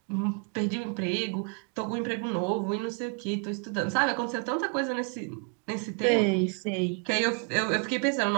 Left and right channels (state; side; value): quieter; left; 38.9 dB